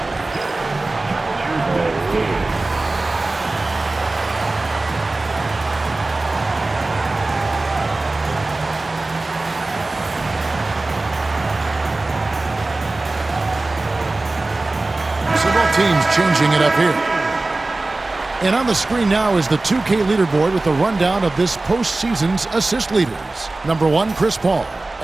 Several teams changing it up here. And on the screen now is the 2K leaderboard with the rundown of this postseason's assist leaders. Number 1, Chris Paul.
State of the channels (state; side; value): quieter; left; 3.1 dB